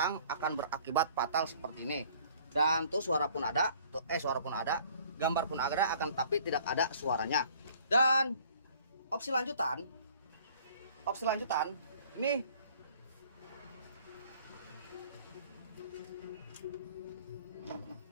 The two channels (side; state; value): both; inverted; correlation -0.55